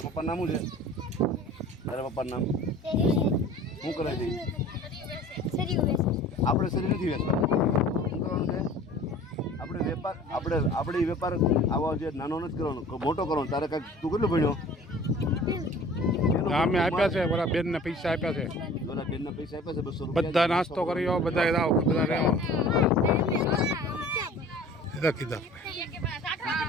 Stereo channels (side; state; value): both; normal; correlation 0.46